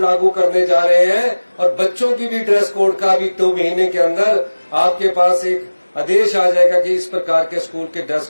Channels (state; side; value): inverted; both; correlation -1.00